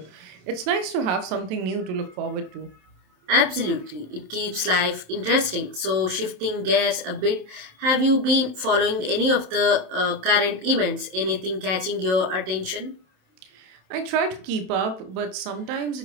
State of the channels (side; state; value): left; late; 27 ms